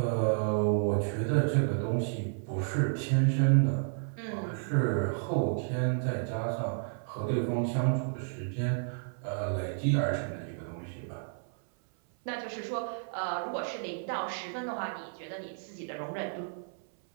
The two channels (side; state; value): left; silent; 56 dB below the other